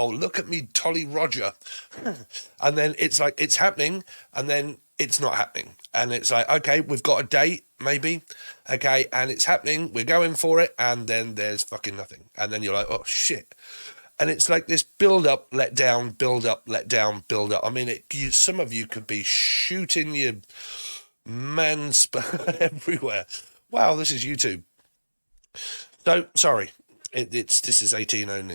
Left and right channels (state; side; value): inverted; both; correlation -1.00